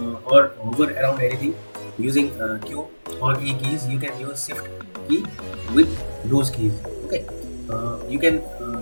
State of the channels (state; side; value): inverted; both; correlation -1.00